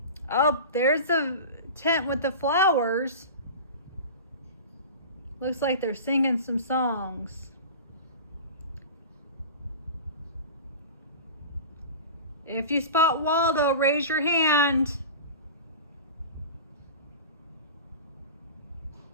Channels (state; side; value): inverted; both; correlation -0.33